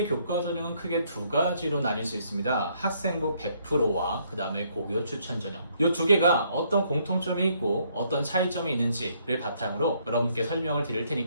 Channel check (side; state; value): both; inverted; correlation -0.68